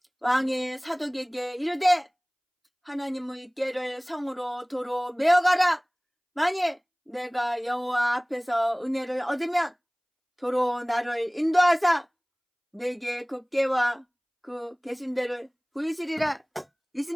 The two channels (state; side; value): identical; both; correlation 1.00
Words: 왕이 사독에게 이르되 하나님의 궤를 성으로 도로 메어가라. 만일 내가 여호와 앞에서 은혜를 얻으면 도로 나를 인도하사 내게 그 궤와 그 계신대를 보이시리라.